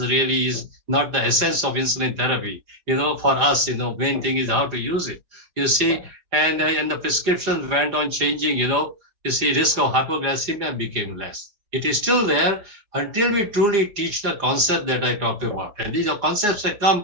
is not the essence of insulin therapy. For us, main thing is how to use it. You see, and the prescriptions went on changing, you see, risk of hypoglycemia became less. It is still there until we truly teach the concept that I talked about. And these are concepts that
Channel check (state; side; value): late; left; 4.7 ms